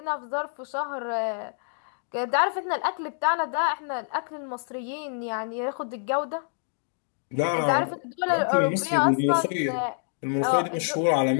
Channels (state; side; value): silent; right; 60 dB below the other